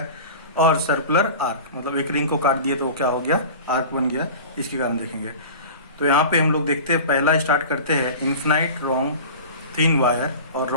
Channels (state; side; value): inverted; both; correlation -0.36